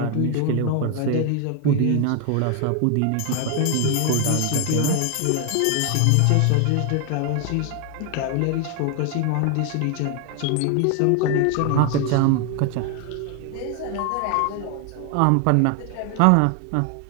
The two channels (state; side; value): different; both; correlation 0.00